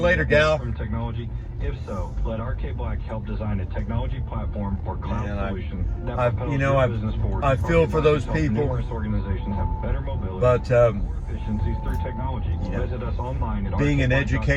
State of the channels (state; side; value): identical; both; correlation 1.00